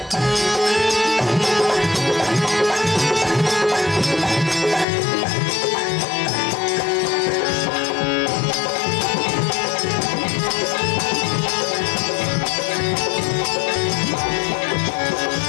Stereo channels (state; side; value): drops out; right; at 4.9 s